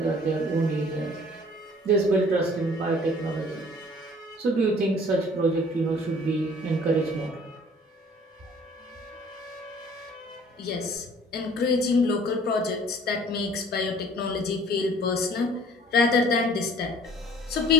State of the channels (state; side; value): normal; both; correlation 0.53